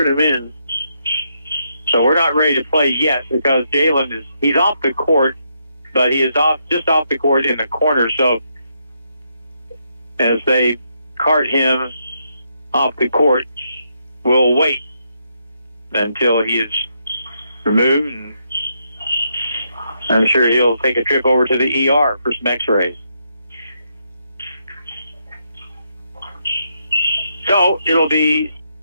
him in. So we're not ready to play yet because Jalen he's off the court, but he is just off the court in the corner. So as they cart him off the court, we'll wait until he is removed, and I'm sure he'll take a trip over to the ER for some x-rays. So it'll be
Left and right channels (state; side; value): inverted; both; correlation -0.78